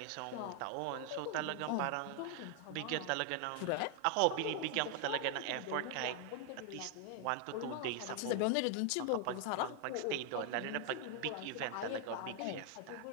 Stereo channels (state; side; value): different; both; correlation 0.00